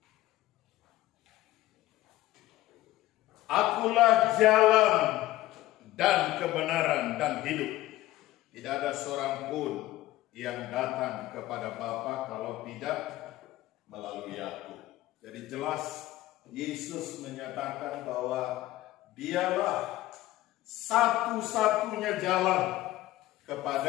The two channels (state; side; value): quieter; right; 16.1 dB